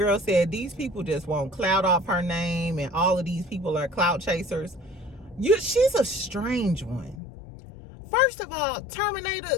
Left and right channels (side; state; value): right; drops out; at 7.2 s